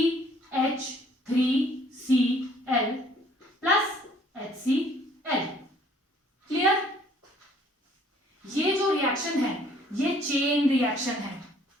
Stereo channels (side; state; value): both; normal; correlation 0.59